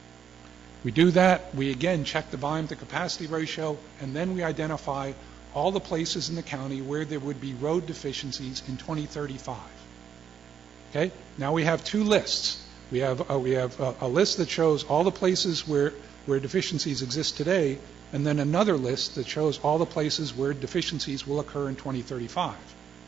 We do that, we again check the volume to capacity ratio, and then we identify all the places in the county where there would be road deficiencies in 2035. Okay? Now we have two lists. We have a list that shows all the places where deficiencies exist today, and then another list that shows all the places where deficiencies will occur in 2035,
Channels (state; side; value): quieter; left; 8.1 dB